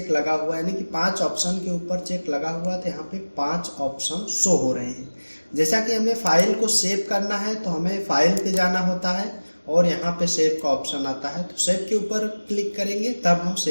लगा हुआ है, यानी कि 5 ऑप्शन के ऊपर चेक लगा हुआ है तो यहाँ पे 5 ऑप्शन शो हो रहे हैं। जैसा कि हमें फाइल को सेव करना है तो हमें फाइल पे जाना होता है और यहाँ पे सेव का ऑप्शन आता है, तो सेव के ऊपर क्लिक करेंगे तब हम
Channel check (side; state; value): both; inverted; correlation -1.00